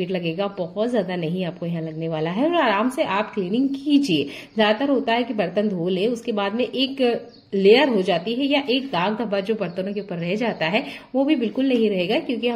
लगेगा, बहुत ज्यादा नहीं आपको यहाँ लगने वाला है, और आराम से आप क्लीनिंग कीजिए। ज्यादातर होता है कि बर्तन धो ले, उसके बाद में एक लेयर हो जाती है या एक दाग धब्बा जो बर्तनों के ऊपर रह जाता है वो भी बिल्कुल नहीं रहेगा, क्योंकि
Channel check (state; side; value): identical; both; correlation 1.00